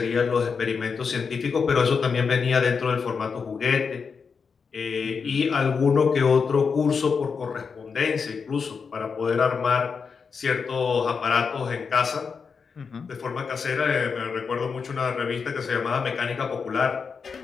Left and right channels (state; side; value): quieter; right; 5.6 dB